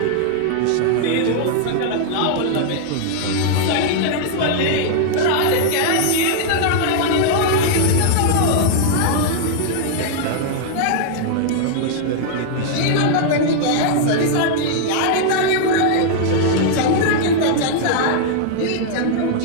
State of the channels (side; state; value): both; different; correlation -0.01